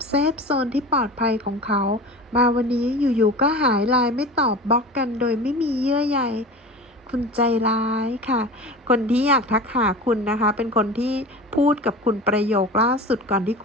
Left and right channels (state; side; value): normal; both; correlation 0.34